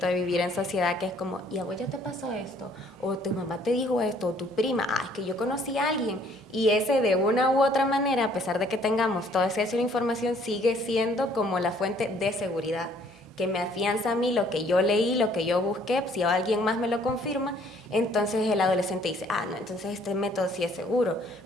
de vivir en sociedad, que es como, ¿y a vos ya te pasó esto? O tu mamá te dijo esto, o tu prima, es que yo conocí a alguien, y ese de una u otra manera, a pesar de que tengamos toda esa información, sigue siendo como la fuente de seguridad, que me afianza a mí lo que yo leí, lo que yo busqué. Si alguien más me lo confirma, entonces el adolescente dice, no, entonces este método sí es seguro.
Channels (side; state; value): both; normal; correlation 0.61